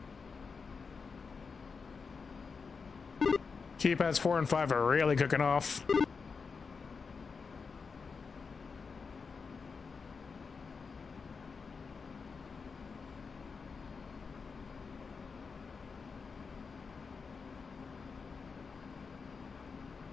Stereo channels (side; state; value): right; quieter; 5.1 dB